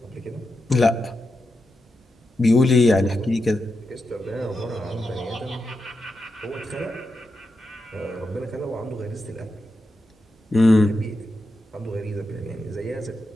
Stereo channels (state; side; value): normal; both; correlation 0.88